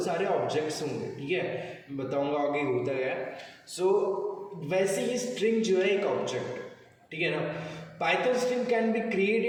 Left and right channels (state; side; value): identical; both; correlation 1.00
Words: ऑब्जेक्ट्स होंगे। ठीक है, मैं बताऊंगा आगे होता क्या है। सो वैसे ही स्ट्रिंग जो है एक ऑब्जेक्ट, ठीक है ना। Python string can be